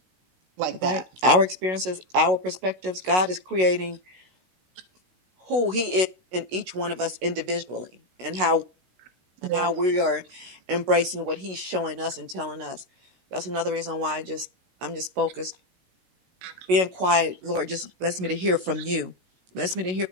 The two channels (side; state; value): left; late; 16 ms